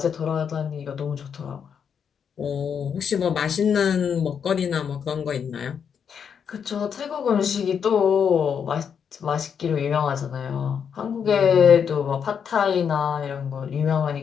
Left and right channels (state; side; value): quieter; right; 7.3 dB